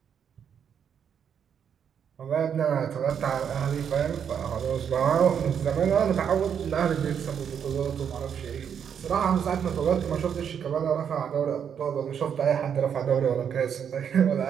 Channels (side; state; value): left; quieter; 7.9 dB